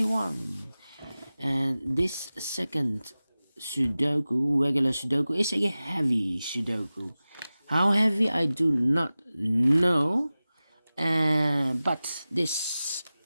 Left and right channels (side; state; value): both; inverted; correlation -0.96